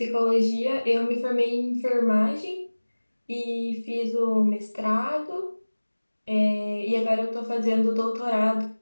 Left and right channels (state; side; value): inverted; both; correlation -1.00